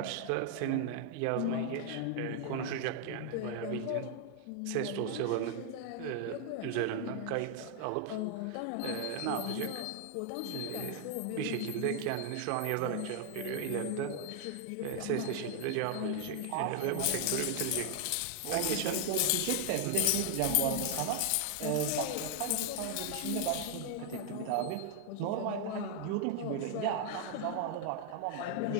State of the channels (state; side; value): different; both; correlation 0.00